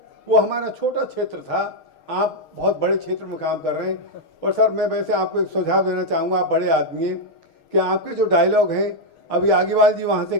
वो हमारा छोटा क्षेत्र था, आप बहुत बड़े क्षेत्र में काम कर रहे हैं। और सर मैं वैसे आपको एक सुझाव देना चाहूँगा, आप बड़े आदमी हैं, कि आपके जो डायलॉग हैं, अभी आगीवाल जी वहाँ से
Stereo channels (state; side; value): late; right; 6.4 ms